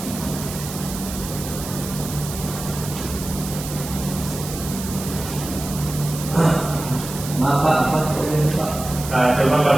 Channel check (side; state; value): right; noise; hiss, 10 dB below the sound